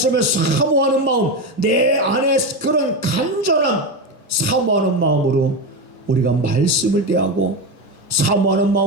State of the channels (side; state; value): both; normal; correlation 0.15